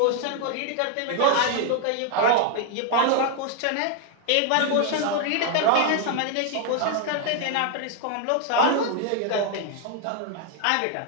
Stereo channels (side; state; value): both; different; correlation 0.00